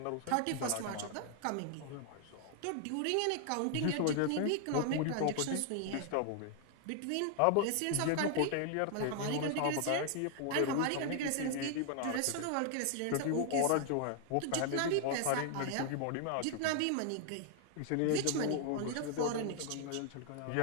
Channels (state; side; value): different; both; correlation 0.00